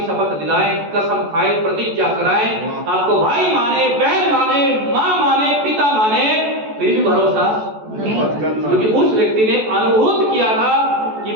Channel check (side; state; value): left; late; 14 ms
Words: शपथ दिलाए, कसम खाए, प्रतिज्ञा कराए, आपको भाई माने, बहन माने, माँ माने, पिता माने, फिर भी भरोसा नहीं, क्योंकि उस व्यक्ति ने अनुभूत किया था कि